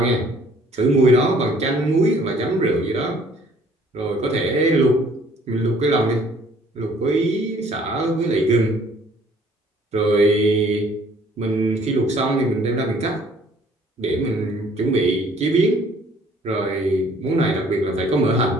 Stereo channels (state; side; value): normal; both; correlation 0.58